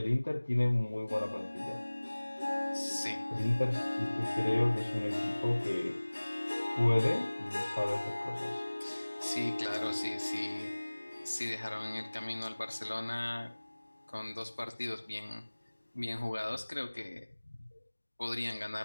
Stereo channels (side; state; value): both; inverted; correlation -1.00